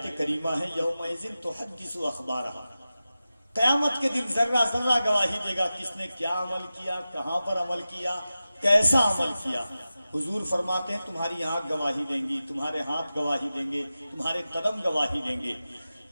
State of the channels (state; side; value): inverted; both; correlation -0.94